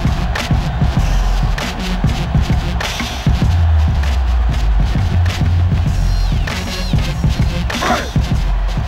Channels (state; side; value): identical; both; correlation 1.00